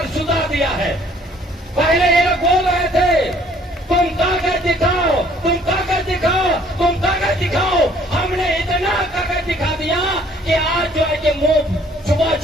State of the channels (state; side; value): normal; both; correlation 0.59